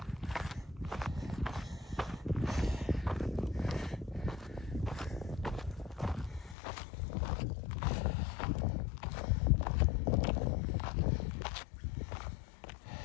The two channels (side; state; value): right; drops out; at 6.6 s